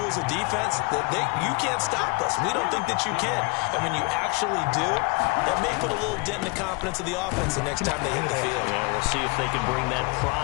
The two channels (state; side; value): quieter; right; 29.6 dB